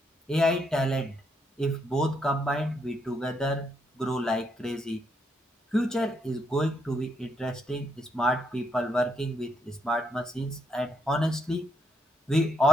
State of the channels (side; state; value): both; normal; correlation 0.77